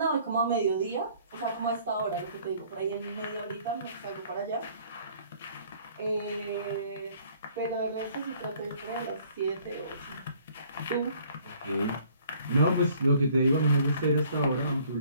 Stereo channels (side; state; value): both; inverted; correlation -0.58